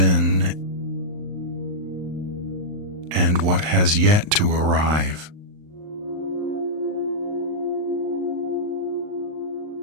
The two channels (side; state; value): left; late; 39 ms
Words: and what has yet to arrive.